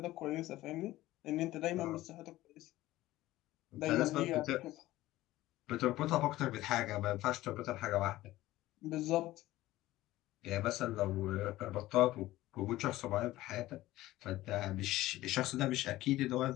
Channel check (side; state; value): right; quieter; 16.5 dB